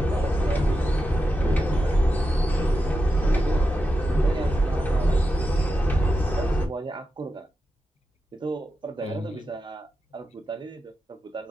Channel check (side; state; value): both; normal; correlation 0.89